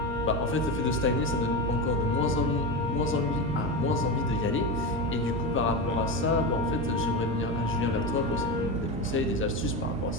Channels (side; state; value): both; normal; correlation 0.19